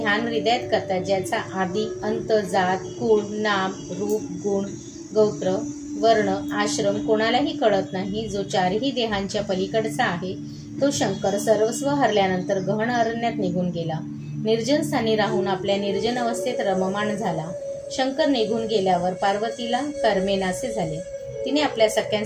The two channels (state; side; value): identical; both; correlation 1.00